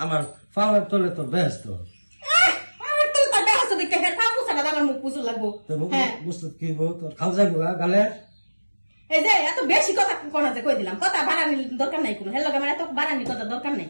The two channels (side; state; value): both; inverted; correlation -1.00